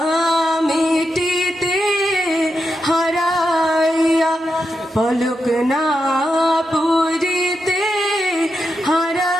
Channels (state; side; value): normal; both; correlation 0.87